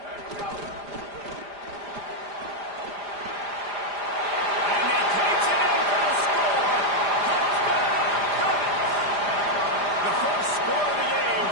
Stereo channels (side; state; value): left; late; 5.0 ms